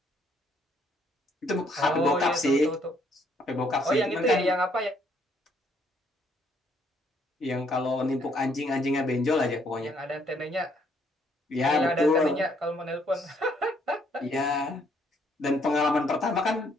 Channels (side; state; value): both; normal; correlation 0.68